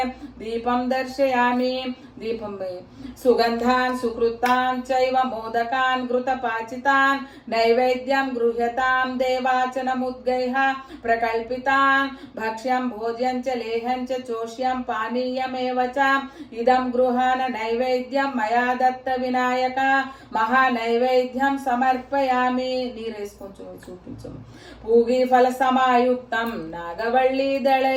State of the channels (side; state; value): both; identical; correlation 1.00